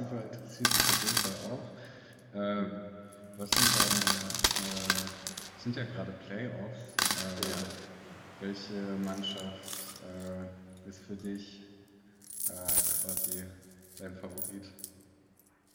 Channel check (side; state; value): both; identical; correlation 1.00